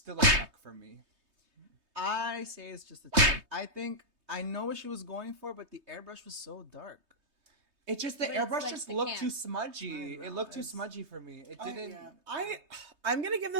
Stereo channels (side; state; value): left; late; 3.2 ms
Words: a chuck for me. I say it's just a check. I think I know what she was going for, but the airbrush was so dark. It just the airbrush like just the looked camp. too smudgy. It looked too smudgy for me. It didn't. I'm gonna give